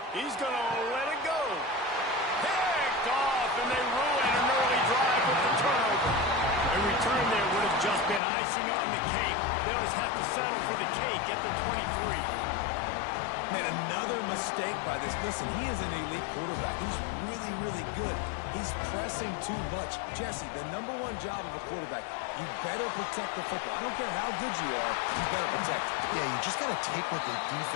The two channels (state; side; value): drops out; right; at 8.2 s